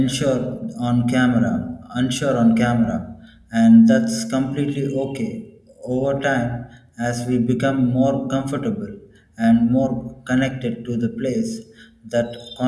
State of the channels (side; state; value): both; identical; correlation 1.00